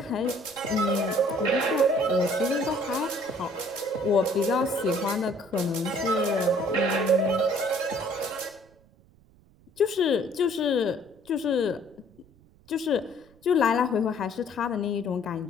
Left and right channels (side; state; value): right; noise; rumble, 28 dB below the sound